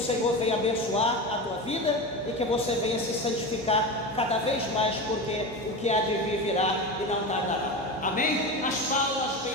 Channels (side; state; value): right; noise; hum, 23 dB below the sound